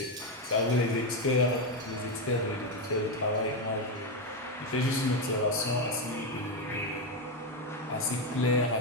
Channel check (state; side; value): normal; both; correlation 0.08